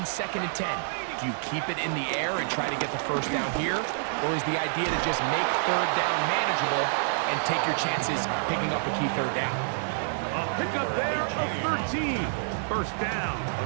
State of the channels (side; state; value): left; silent; digital silence